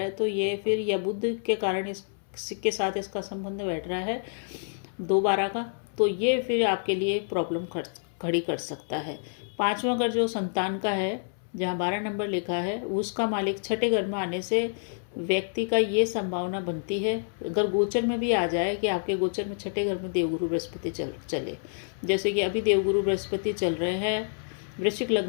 है तो ये फिर, या बुध के कारण इसके साथ इसका संबंध बैठ रहा है 2/12 का, तो ये फिर आपके लिए प्रॉब्लम खड़ी कर सकता है। 5वां घर जो संतान का है, जहाँ 12 नंबर लिखा है, उसका मालिक 6ठे घर में आने से व्यक्ति का ये संभावना बनती है, अगर गोचर में भी आ जाए कि आपके गोचर में 6ठे घर में देवगुरु बृहस्पति चले, जैसे कि अभी देवगुरु बृहस्पति चल रहे हैं वृश्चिक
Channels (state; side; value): silent; right; 59 dB below the other